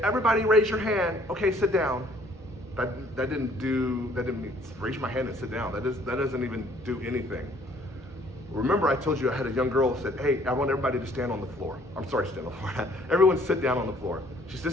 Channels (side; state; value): both; normal; correlation 0.60